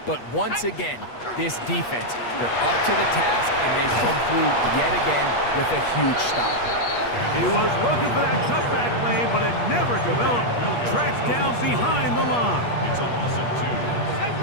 But once again, this defense, they're up to the task, and they come through yet again with a huge stop. He was looking for that cutback lane, but it never developed. Tracked down behind the line. It's a loss of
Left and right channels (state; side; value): late; right; 8.4 ms